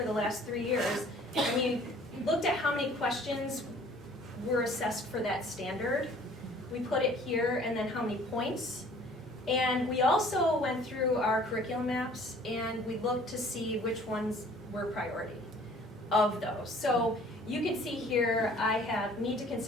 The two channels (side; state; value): both; normal; correlation 0.53